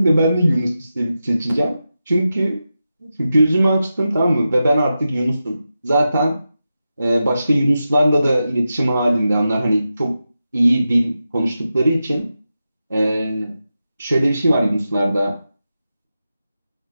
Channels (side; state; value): both; inverted; correlation -0.90